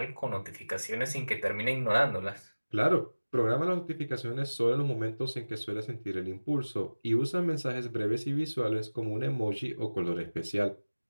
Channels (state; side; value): inverted; both; correlation -1.00